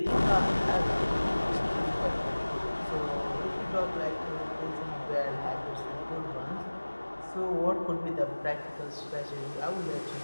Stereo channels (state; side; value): inverted; both; correlation -1.00